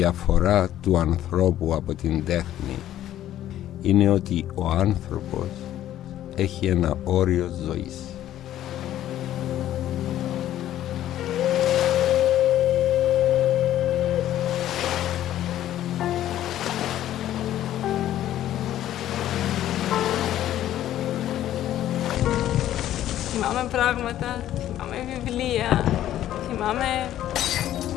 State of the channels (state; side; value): quieter; right; 12.5 dB